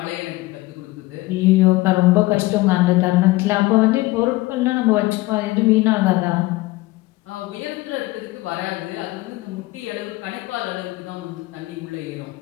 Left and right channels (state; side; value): quieter; right; 19.8 dB